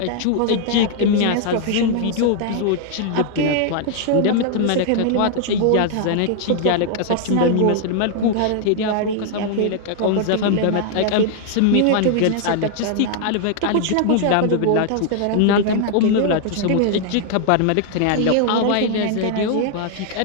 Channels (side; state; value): both; different; correlation 0.00